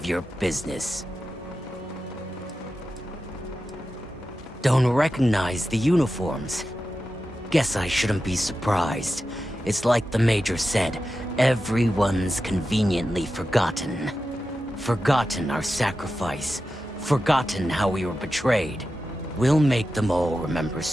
your business. Don't recognize the uniforms? Guess I shouldn't be surprised. It's like the Major said, everyone's conveniently forgotten. Forgotten our sacrifice. Forgotten how we were betrayed. We'll make them all remember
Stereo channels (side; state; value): both; normal; correlation 0.91